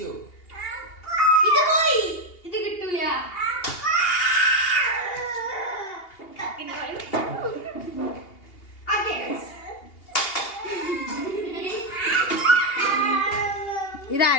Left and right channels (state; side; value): late; right; 2.8 ms